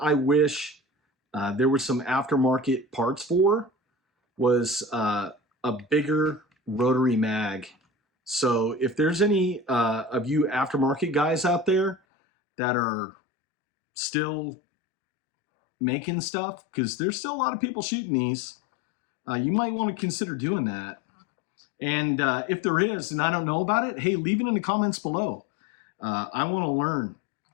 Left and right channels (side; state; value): right; drops out; at 12.0 s